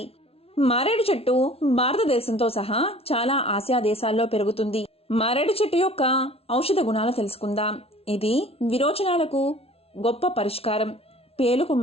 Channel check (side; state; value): right; late; 0.29 ms